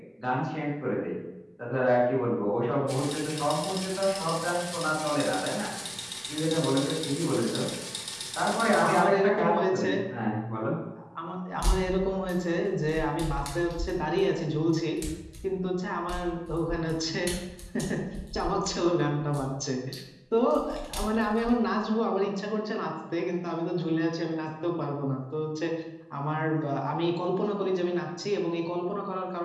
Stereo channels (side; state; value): both; identical; correlation 1.00